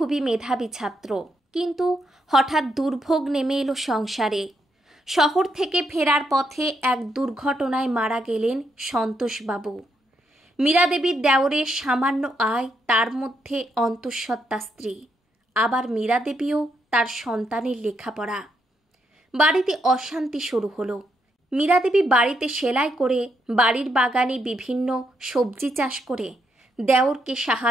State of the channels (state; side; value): normal; both; correlation 0.78